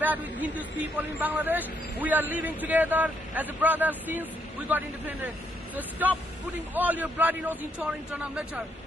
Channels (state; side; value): normal; both; correlation 0.74